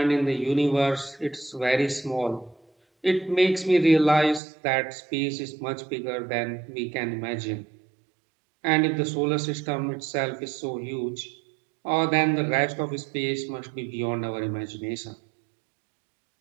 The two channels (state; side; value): drops out; left; at 4.4 s